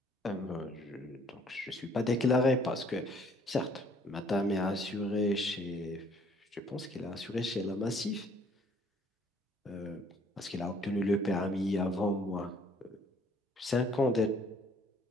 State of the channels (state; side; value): normal; both; correlation 0.61